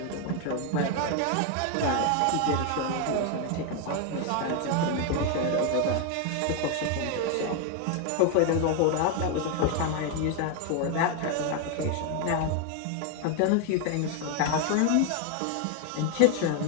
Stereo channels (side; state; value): both; different; correlation 0.01